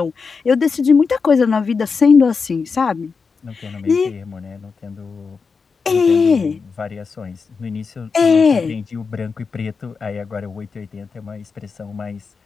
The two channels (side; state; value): right; quieter; 5.1 dB